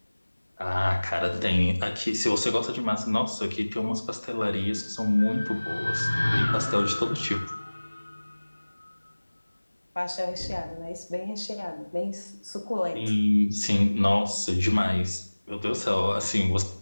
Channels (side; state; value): both; inverted; correlation -1.00